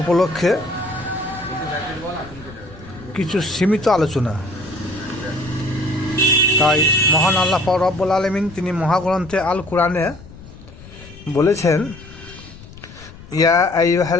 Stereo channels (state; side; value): noise; left; rumble, 18 dB below the sound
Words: উপলক্ষে কিছু সীমিত আলোচনা। তাই মহান আল্লাহ পাক রব্বুল আলামিন তিনি মহাগ্রন্থে আল কোরআনে বলেছেন, ইয়া